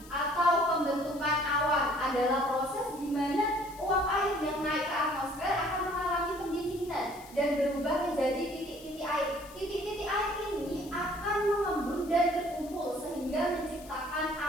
atau pembentukan awan adalah proses di mana uap air yang naik ke atmosfer akan mengalami pendinginan dan berubah menjadi titik-titik air. Titik-titik air ini akan mengembun dan berkumpul sehingga menciptakan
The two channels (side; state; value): left; noise; hiss, 20 dB below the sound